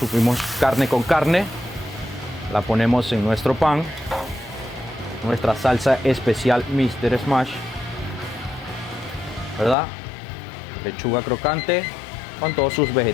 carne con carne, la ponemos en nuestro pan. Nuestra salsa especial Mr. Smash, ¿verdad? Lechuga crocante con todos sus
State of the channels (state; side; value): drops out; right; at 9.8 s